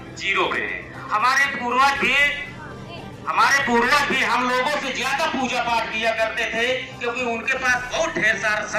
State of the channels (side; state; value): both; identical; correlation 1.00